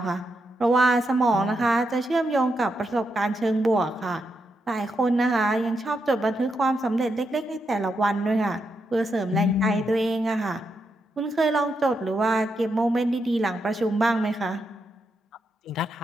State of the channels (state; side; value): normal; both; correlation 0.83